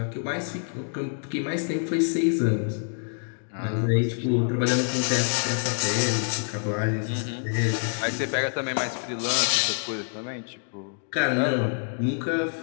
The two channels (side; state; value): right; silent; digital silence